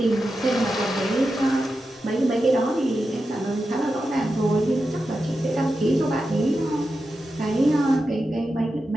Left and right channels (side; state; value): both; normal; correlation 0.90